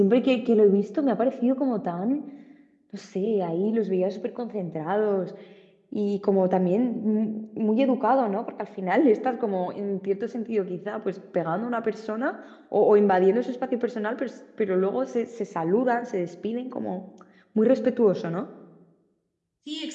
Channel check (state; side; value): identical; both; correlation 1.00